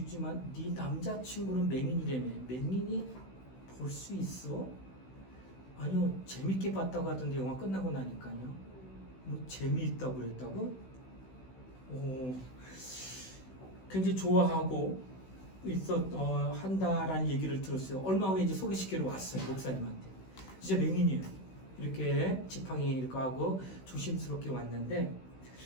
네 남자친구는 맹인이라며. 맹인이 볼 수 있어? 아니요, 재밌게 봤다고 하던데 영화 끝나고 나니까요. 뭐 재미있다고 그랬다고? 굉장히 좋아하고 한다라는 얘기를 들었어요. 얼마 후에 이제 소개시키러 왔어요, 목사님한테. 진짜 맹인이에요. 이렇게 지팡이 이렇게 하고 조심스럽게 왔는데,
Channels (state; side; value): late; right; 16 ms